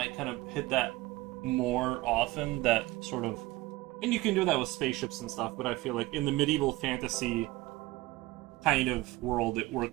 kind of hit that more often, that sort of... And you can do that with spaceships and stuff, but I feel like in the medieval fantasy kind of world, it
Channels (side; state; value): left; quieter; 19.2 dB